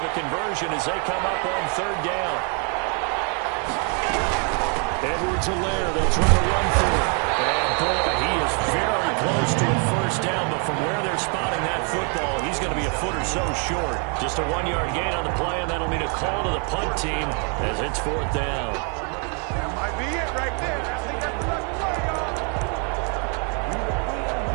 a conversion as they come up on 3rd down. Edwards-Helaire, they'll try to run through it. And boy, he is very close to a first down, but from where they're spotting that football, he's going to be a a foot or so short. Just a 1-yard gain on the play, and that'll mean a call to the punt team as it's 4th down. That might be it right there. I think that's the play, y'all.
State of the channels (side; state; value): left; quieter; 38.2 dB